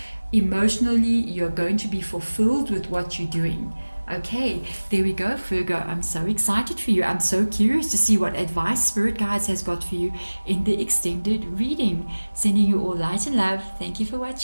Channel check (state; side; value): inverted; both; correlation -1.00